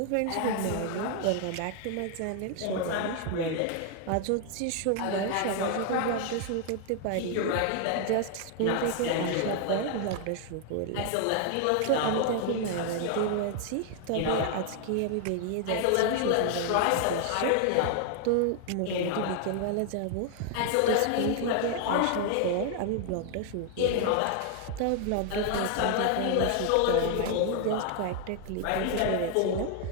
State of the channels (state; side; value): different; both; correlation 0.00